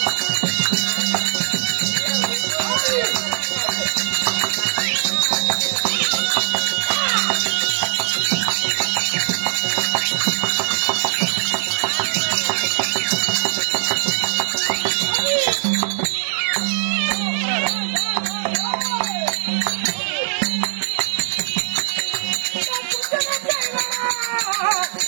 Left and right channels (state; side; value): silent; left; 56 dB below the other